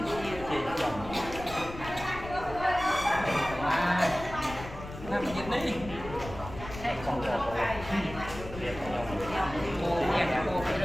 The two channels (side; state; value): left; noise; rumble, 12 dB below the sound